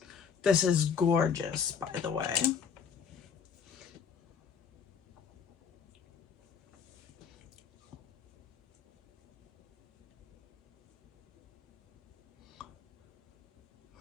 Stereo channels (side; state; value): right; quieter; 6.9 dB